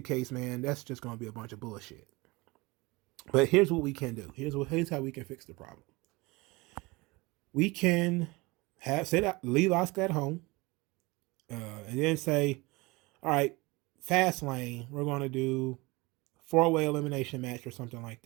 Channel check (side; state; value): left; quieter; 23.9 dB